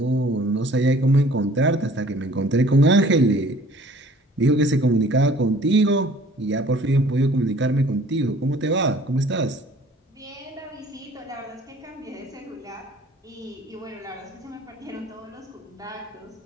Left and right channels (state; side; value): normal; both; correlation 0.52